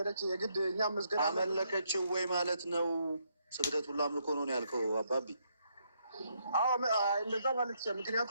የግድ እኛም መስገድ አመለከችው ወይ ማለት ነው? ስግደት ሁሉ አምልኮ ነው ያልከው አባቢ? አዎ እንደዛ ማለት ይችላል።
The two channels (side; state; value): both; inverted; correlation -0.75